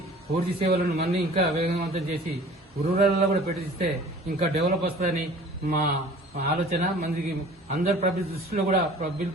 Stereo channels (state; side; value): normal; both; correlation 0.47